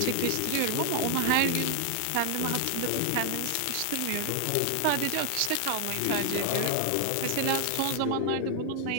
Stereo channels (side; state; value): both; different; correlation 0.01